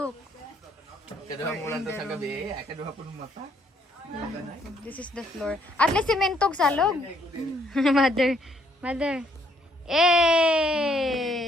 Kaduha mulan to sa gabi, ay kaduha po ng mata. This is the floor. At least simentog salog. Mother.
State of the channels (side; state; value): both; normal; correlation 0.68